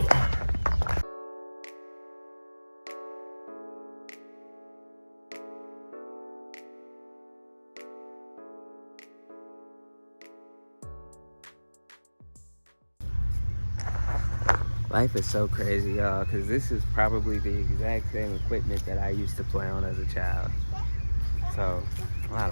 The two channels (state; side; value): inverted; both; correlation -1.00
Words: Life is so crazy, y'all, because this is probably the exact same equipment that I used to play on as a child. So, I